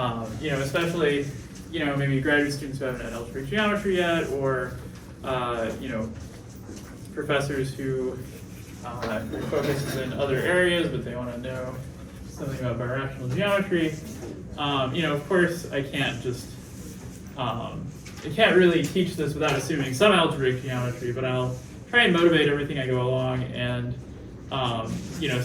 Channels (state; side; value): identical; both; correlation 1.00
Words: especially, maybe graduate students who haven't had algebraic geometry yet, or professors who focus in other areas, but they want to know something about birational geometry. Of course, I can't just, I can't really teach this without assuming some algebraic geometry, but I'll try and motivate everything I go along, and